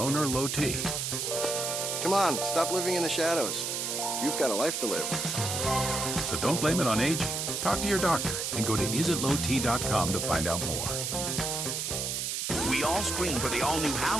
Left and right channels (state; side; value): noise; right; hiss, 2 dB below the sound